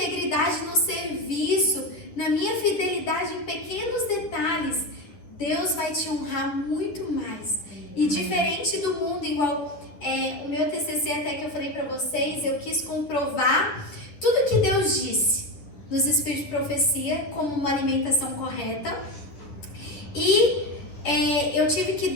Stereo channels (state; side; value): late; right; 10 ms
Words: no serviço, na minha fidelidade em pequenos detalhes, Deus vai te honrar muito mais. E diferente do mundo, igual o meu TCC até que eu falei para vocês, eu quis comprovar tudo que Deus disse nos Espíritos de Profecia como uma alimentação correta. E eu tive que